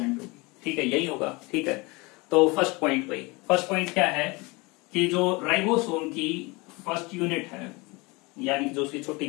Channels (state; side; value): quieter; right; 25.6 dB